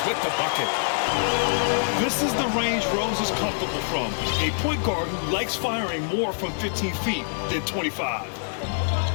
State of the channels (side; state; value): right; silent; digital silence